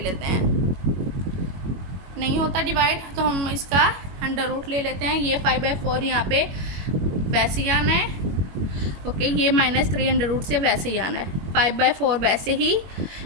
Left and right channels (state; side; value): late; left; 21 ms